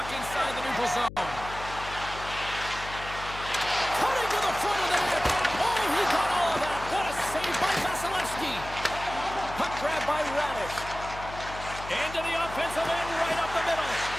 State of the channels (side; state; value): left; noise; hum, 12 dB below the sound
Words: inside the neutral zone. Cutting to the front of the net. Oh, he got all of that. What a save by Vasilevsky. Puck grab by Radish. Into the offensive end, right up the middle.